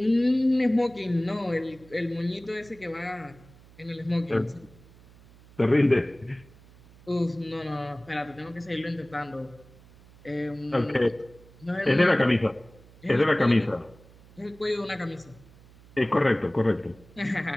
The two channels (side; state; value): right; noise; hum, 24 dB below the sound